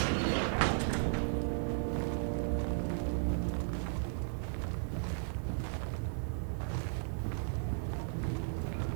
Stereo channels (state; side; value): silent; left; 54 dB below the other